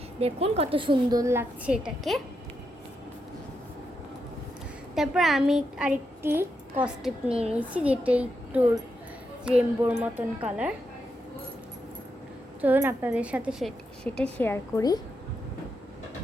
দেখুন কত সুন্দর লাগছে এটাকে। তারপর আমি আরেকটি কস্টেপ নিয়ে নিয়েছি, যেটা একটু রেনবোর মতন কালার। চলুন আপনাদের সাথে সেটা শেয়ার করি।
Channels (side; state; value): both; normal; correlation 0.83